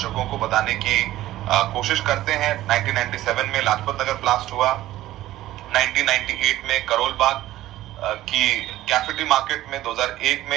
को बताने की कोशिश करते हैं। 1997 में लाजपत नगर ब्लास्ट हुआ, 1998 में करोल बाग की कैफेटी मार्केट में, 2001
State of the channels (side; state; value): left; quieter; 15.0 dB